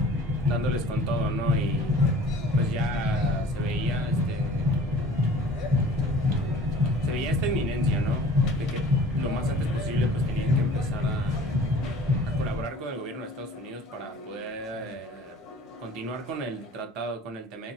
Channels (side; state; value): both; normal; correlation 0.46